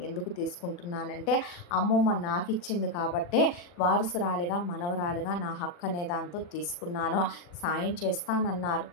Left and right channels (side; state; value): right; late; 40 ms